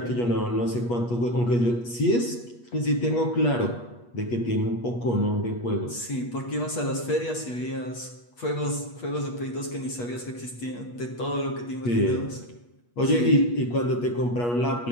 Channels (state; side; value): late; right; 8.4 ms